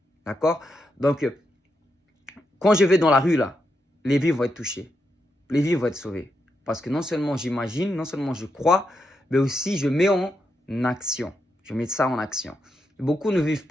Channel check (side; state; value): both; normal; correlation 0.83